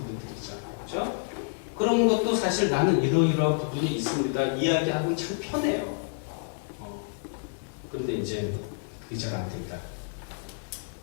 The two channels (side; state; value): right; silent; digital silence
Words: 있잖아요. 그렇죠? 그런 것도 사실 나는 이러이러한 부분이 있습니다. 이야기하면 참 편해요. 근데 이제 그게 잘 안 된다.